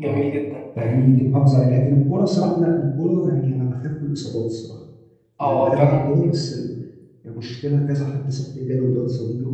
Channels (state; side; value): identical; both; correlation 1.00